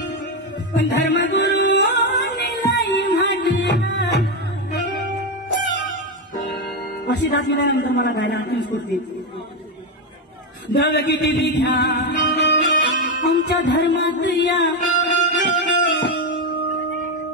धर्मगुरू अशी दास गेल्यानंतर मला गायला आणखी स्फूर्ती जग किती बिघ्या आमच्या धर्मात या.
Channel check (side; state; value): both; normal; correlation 0.09